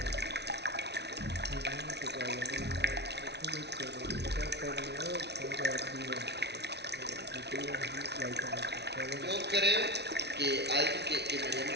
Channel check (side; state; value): left; late; 0.49 ms